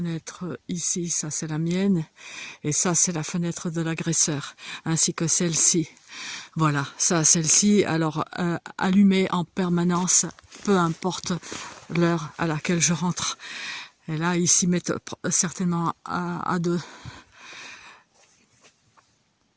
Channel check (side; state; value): both; identical; correlation 1.00